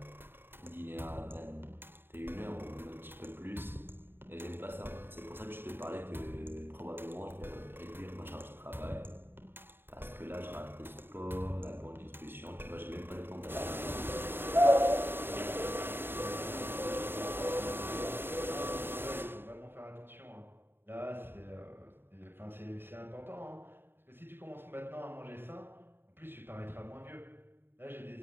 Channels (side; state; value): left; late; 0.10 ms